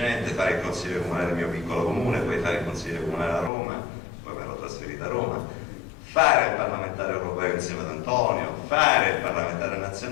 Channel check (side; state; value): right; drops out; at 3.5 s